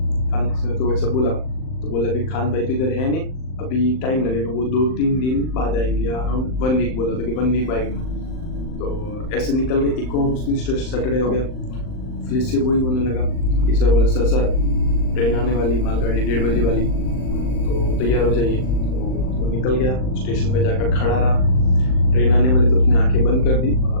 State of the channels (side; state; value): right; late; 39 ms